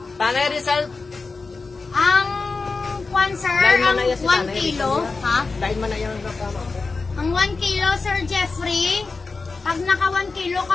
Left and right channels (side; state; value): right; quieter; 4.1 dB